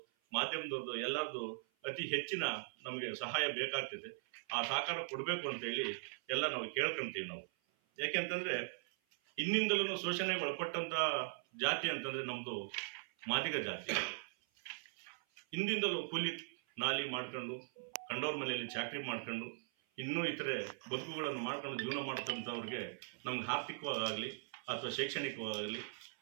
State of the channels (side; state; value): left; silent; 51 dB below the other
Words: ಮಾಧ್ಯಮದವ್ರದ್ದು, ಎಲ್ಲರದ್ದು ಅತಿ ಹೆಚ್ಚಿನ ನಮಗೆ ಸಹಾಯ ಬೇಕಾಗ್ತದೆ. ಆ ಸಹಕಾರ ಕೊಡಬೇಕು ಅಂತೇಳಿ ಎಲ್ಲ ನಾವು ಕೇಳ್ಕೊಂತೀವಿ. ನಾವು ಯಾಕೆಂತಂದ್ರೆ ಇನ್ನಿಂದಲೂ ಶೋಷಣೆಗೆ ಒಳಪಟ್ಟಂತ ಜಾತಿ ಅಂತಂದ್ರೆ ನಮ್ದು ಮಾದಿಗ ಜಾತಿ. ಹಿಂದಿಂದಲೂ ಕೂಲಿ ನಾಲಿ ಮಾಡ್ಕೊಂಡು, ಕಂಡೋರ್ ಮನೆಯಲ್ಲಿ ಚಾಕ್ರಿ ಮಾಡ್ಕೊಂಡು, ಇನ್ನೂ ಇತರೆ ಬದುಕುಗಳನ್ನು ಮಾಡ್ಕೊಂಡು ಜೀವನ ಮಾಡ್ತಂಥವ್ರಿಗೆ ನಮ್ಗೆ ಆರ್ಥಿಕವಾಗಲಿ ಅಥವಾ ಶೈಕ್ಷಣಿಕವಾಗಲಿ